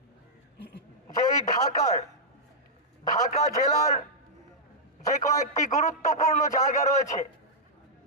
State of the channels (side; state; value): both; normal; correlation -0.08